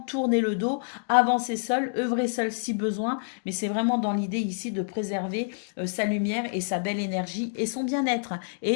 tourner le dos, avancer seul, œuvrer seul si besoin, mais c'est vraiment dans l'idée ici de préserver sa lumière et sa belle énergie et son bien-être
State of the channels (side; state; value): right; silent; digital silence